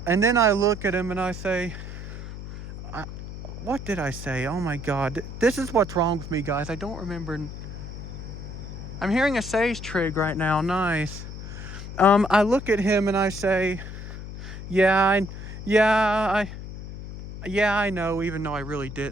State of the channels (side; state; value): left; noise; hum, 10 dB below the sound